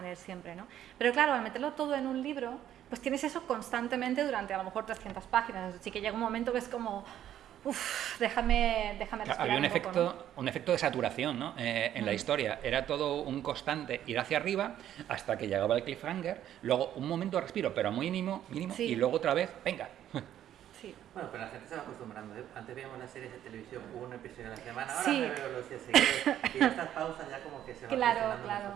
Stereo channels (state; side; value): quieter; left; 11.2 dB